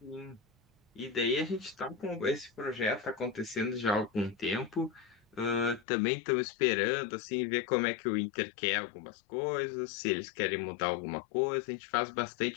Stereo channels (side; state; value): right; drops out; at 5.9 s